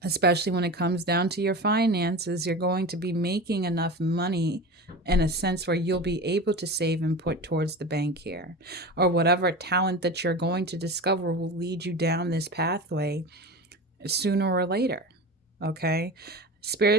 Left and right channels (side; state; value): both; normal; correlation 0.30